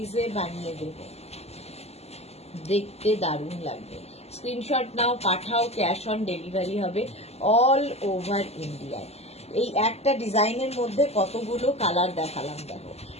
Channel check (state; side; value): late; right; 0.30 ms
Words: বানিয়ে দেব, দেখতে দারুণ লাগবে। স্ক্রিনশট নাও, পাঠাও, ক্যাশ অন ডেলিভারি হবে অল ওভার ইন্ডিয়ায়। এই একটা ডিজাইনের মধ্যে কতগুলো কালার দেখালাম, দেখো,